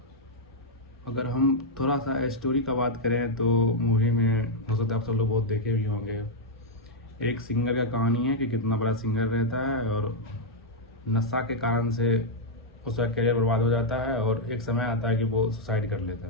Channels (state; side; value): normal; both; correlation -0.03